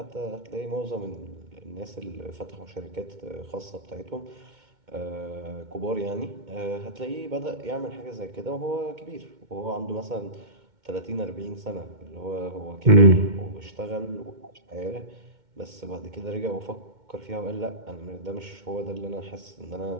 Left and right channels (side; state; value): left; late; 2.2 ms